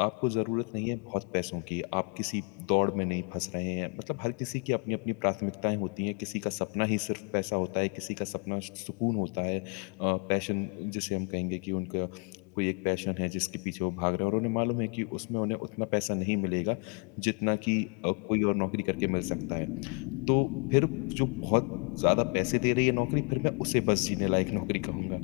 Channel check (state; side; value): quieter; right; 34.5 dB